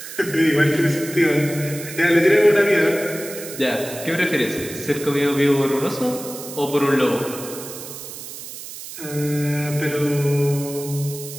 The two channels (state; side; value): noise; right; hiss, 12 dB below the sound